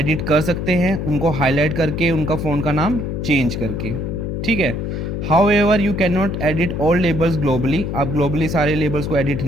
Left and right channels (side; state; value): left; noise; hum, 3 dB below the sound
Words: कर सकते हैं, उनको हाईलाइट करके उनका फ़ोन का नाम चेंज करके, ठीक है। However you can not edit all labels globally. आप ग्लोबली सारे लेबल्स को एडिट